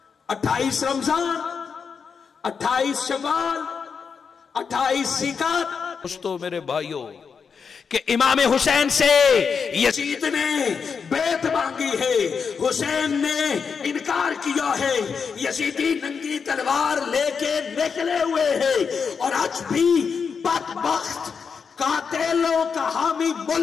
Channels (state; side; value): quieter; right; 6.0 dB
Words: 28 رمضان، 28 شوال، 28 ذیقعدہ۔ دوستو میرے بھائیوں کہ امام حسین سے یزید نے بیعت مانگی ہے، حسین نے انکار کیا ہے، یزیدی ننگی تلوار لے کے نکلے ہوئے ہیں، اور آج بھی بدبخت قاتلوں کا حامی